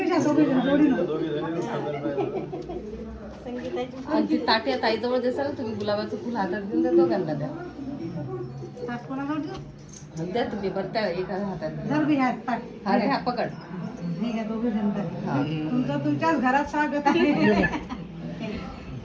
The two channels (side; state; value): both; identical; correlation 1.00